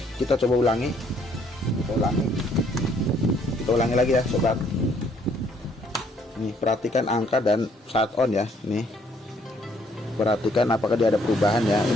kita coba ulangi. Kita ulangi lagi ya, sobat. Nih, perhatikan angka dan saat on ya. Nih, perhatikan apakah dia ada perubahan ya.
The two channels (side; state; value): both; normal; correlation 0.66